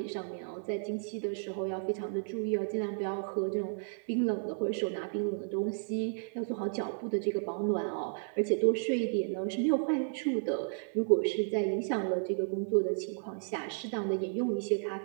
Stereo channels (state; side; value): silent; left; 56 dB below the other